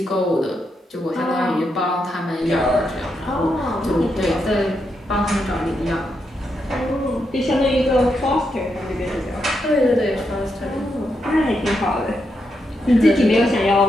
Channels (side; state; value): both; normal; correlation 0.82